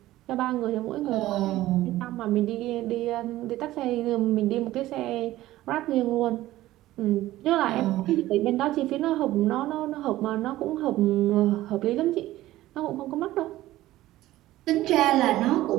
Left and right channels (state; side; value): quieter; left; 15.7 dB